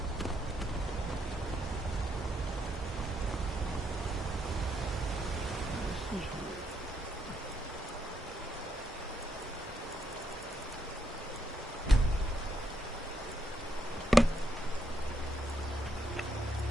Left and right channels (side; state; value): both; normal; correlation 0.77